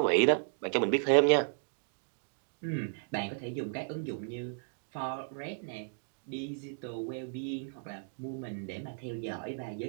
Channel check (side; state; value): left; silent; digital silence